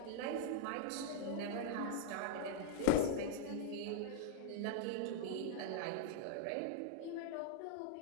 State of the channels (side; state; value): both; different; correlation -0.01